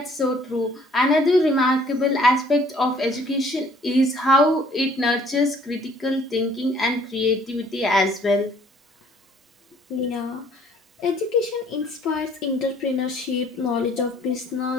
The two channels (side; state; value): both; normal; correlation 0.58